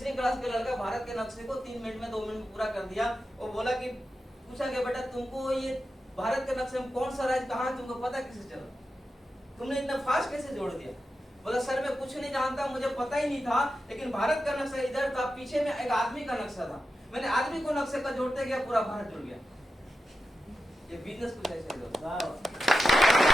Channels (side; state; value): both; normal; correlation 0.90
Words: क्लास के लड़का भारत के नक्शे को 3 मिनट में 2 मिनट में पूरा कर दिया। वो बोला कि पूछा गया बेटा तुमको ये भारत के नक्शे में कौन सा राज्य कहाँ तुमको पता कैसे चला, तुमने इतना फास्ट कैसे जोड़ दिया? बोला सर मैं कुछ नहीं जानता, मुझे पता ही नहीं था, लेकिन भारत का नक्शा इधर था, पीछे में एक आदमी का नक्शा था, मैंने आदमी को नक्शे का जोड़ते गया पूरा भारत जुड़ गया। ये बिजनेस कुछ ऐसे